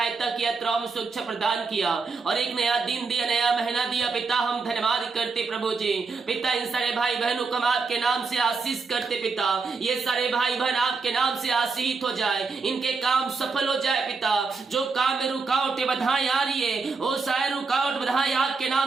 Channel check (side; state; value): left; quieter; 4.5 dB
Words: किया, यात्राओं में सुरक्षा प्रदान किया और एक नया दिन दिया, नया महीना दिया। पिता हम धन्यवाद करते प्रभु जी। पिता इन सारे भाई बहनों को हम आपके नाम से आशीष करते पिता। ये सारे भाई बहन आपके नाम से आशीषित हो जाए, इनके काम सफल हो जाए पिता। जो काम में रुकावटें बाधाएं आ रही है, वो सारे रुकावट बाधाएं आपके